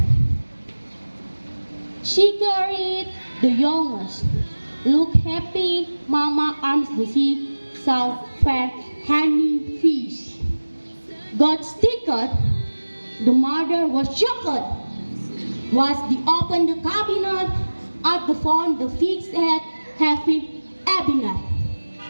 She carried the youngest. Look happy, Mama arms the sea, saw fair honey fish. Got stickered. The mother was shocked. Was the open the cabinet at the phone the fixed head having cabinet.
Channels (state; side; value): inverted; both; correlation -1.00